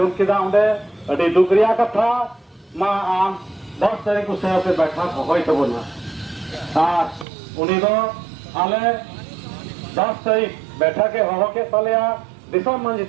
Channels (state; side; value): drops out; left; at 7.2 s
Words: केदा उंडे अड़ी दुकरिया कथा मा आम 10 तारीख को शहर पे बैठा होय तबना उनी दो आले 10 तारीख बैठा के हो के तलेया दिशा